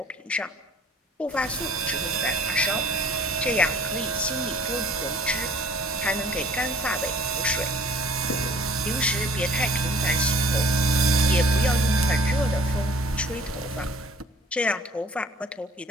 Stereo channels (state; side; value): normal; both; correlation 0.51